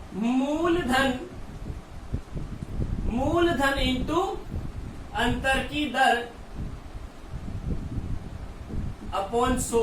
मूलधन इंटू अंतर की दर अपॉन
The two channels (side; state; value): both; identical; correlation 1.00